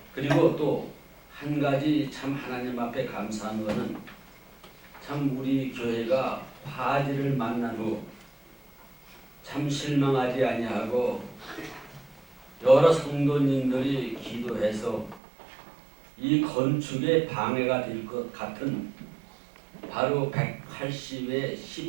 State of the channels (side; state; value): left; drops out; at 15.2 s